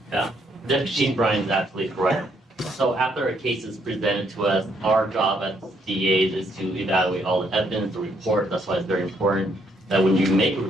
Yeah, Deputy Chief Brian is absolutely correct. So after a case is presented to us, our job as DAs is to evaluate all the evidence, the report. That's why it's very important that when you make a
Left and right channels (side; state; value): both; normal; correlation 0.71